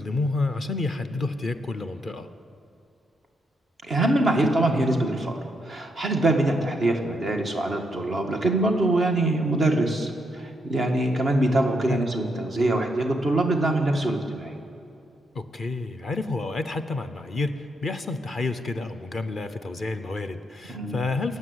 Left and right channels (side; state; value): both; normal; correlation 0.78